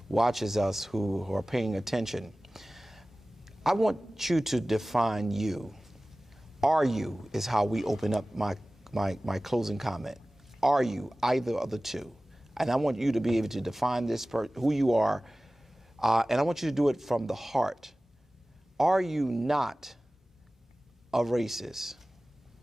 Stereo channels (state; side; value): normal; both; correlation 0.97